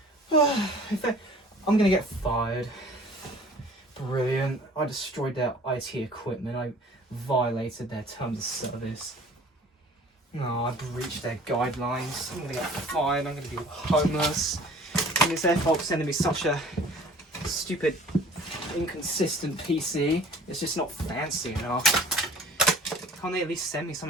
I'm going to get fired. Brilliant. I destroyed their IT equipment. I violated their terms of service. No, I breached their guidelines. I'm going to get fired. I'm going to be homeless. And it's their fault for sending me such a stupid, inconsistent PC. It's just not fancy enough. Can't they at least send me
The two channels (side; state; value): both; normal; correlation 0.49